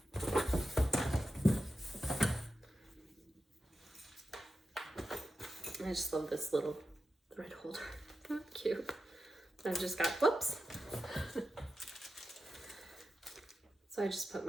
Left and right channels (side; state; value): both; normal; correlation 0.90